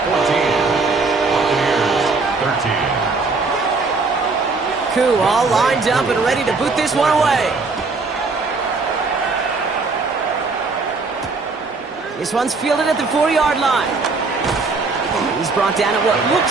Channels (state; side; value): quieter; left; 4.0 dB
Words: 14, Buccaneers 13. Koo all lined up and ready to boot this one away. This one's fielded at the 4-yard line. He's brought down at what